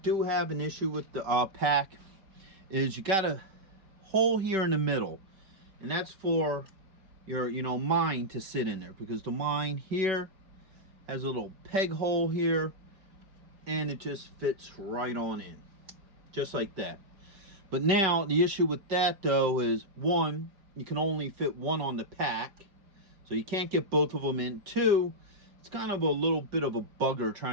have an issue with the pack is you got a hole here in the middle. And that's for your, mine to sit in there. Because the mine here has a little peg hole here. And it just fits right on in. Just like that. But now, the issue with that, though, is one, you can only fit one on the pack. So you can't get both of them in. Two, it's kind of a little bit of a bugger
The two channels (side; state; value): left; late; 5.2 ms